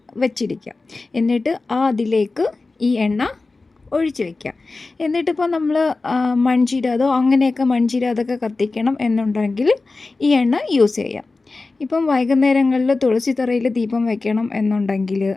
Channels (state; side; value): quieter; right; 3.6 dB